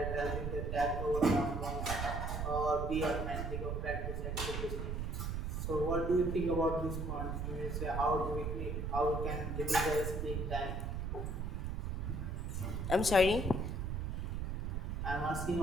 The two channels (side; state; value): right; noise; rumble, 2 dB below the sound